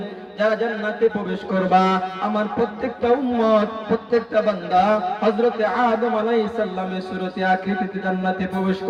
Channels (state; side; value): identical; both; correlation 1.00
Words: যারা জান্নাতে প্রবেশ করবা, আমার প্রত্যেকটা উম্মত, প্রত্যেকটা বান্দা হযরতে আদম আলাইহিস সালামের সুরতে আকৃতিতে জান্নাতে প্রবেশ